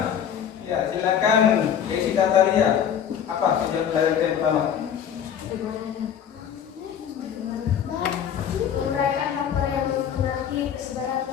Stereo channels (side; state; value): right; quieter; 8.7 dB